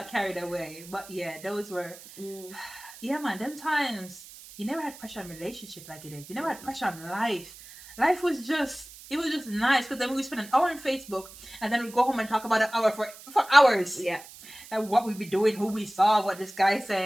carried away. But yeah, those were yeah, man, them times you never had pressure on relationship like it is. You never had pressure on life. Life was just nice because then we would spend an hour on Facebook and then we'd go home and talk about an hour for hours. Yeah. And what we'd be doing, who we saw, what this guy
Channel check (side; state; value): right; noise; hiss, 18 dB below the sound